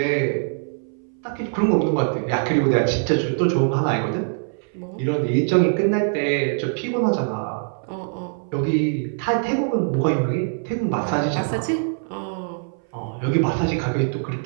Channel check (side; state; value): left; silent; 60 dB below the other